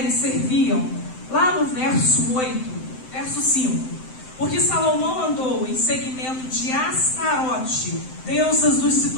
serviam, lá no verso 8, verso 5, porque Salomão andou em seguimento de Astarote, deusas dos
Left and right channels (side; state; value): right; late; 7.8 ms